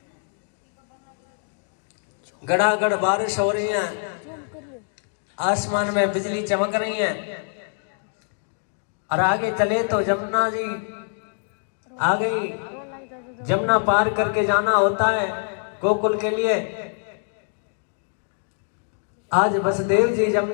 गड़ागड़ बारिश हो रही है, आसमान में बिजली चमक रही है और आगे चले तो जमुना जी आ गई। जमुना पार करके जाना होता है गोकुल के लिए। आज वसुदेव जी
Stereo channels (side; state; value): right; silent; digital silence